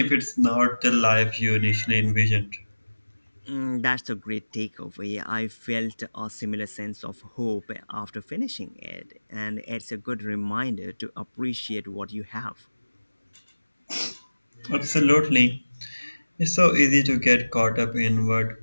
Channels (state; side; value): inverted; both; correlation -1.00